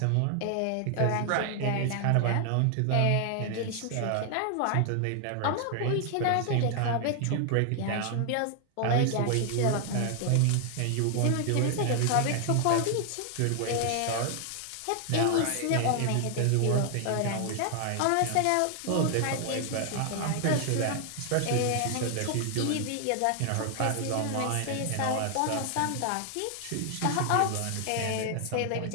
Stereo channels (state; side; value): different; both; correlation 0.00